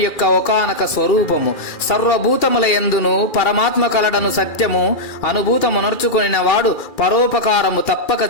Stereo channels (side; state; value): right; late; 2.4 ms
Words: ఒకానొక స్వరూపము. సర్వభూతముల యందును పరమాత్మ కలడను సత్యము అనుభూతమునర్చుకొనిన వాడు పరోపకారము